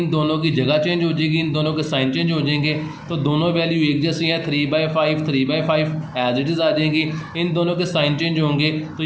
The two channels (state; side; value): identical; both; correlation 1.00